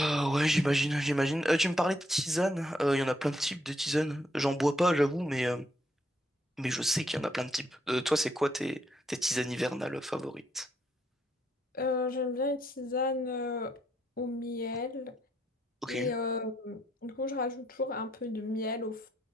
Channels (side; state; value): both; normal; correlation 0.75